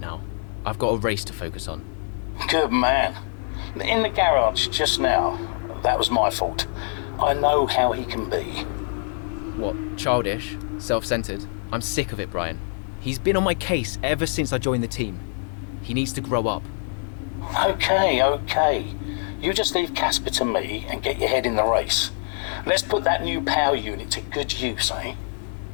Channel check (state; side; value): silent; right; 62 dB below the other